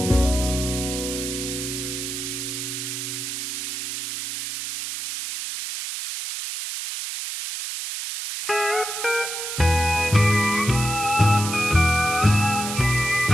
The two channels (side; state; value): right; noise; hiss, 5 dB below the sound